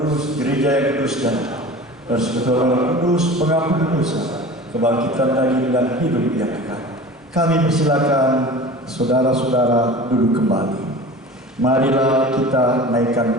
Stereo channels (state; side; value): normal; both; correlation 0.38